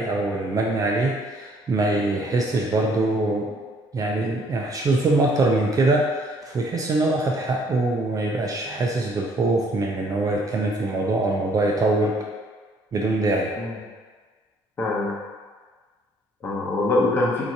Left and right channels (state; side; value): normal; both; correlation 0.63